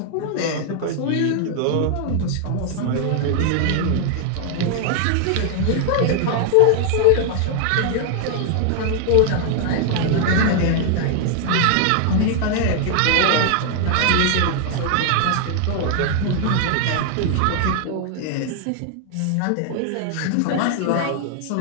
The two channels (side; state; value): both; different; correlation 0.00